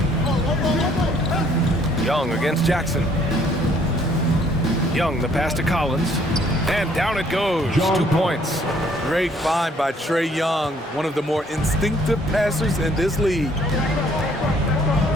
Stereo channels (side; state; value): both; normal; correlation 0.62